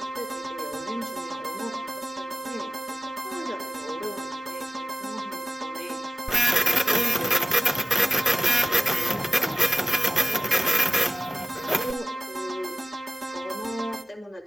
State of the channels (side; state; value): both; normal; correlation 0.97